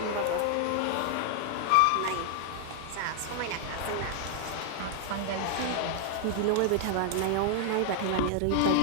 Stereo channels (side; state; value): both; different; correlation 0.00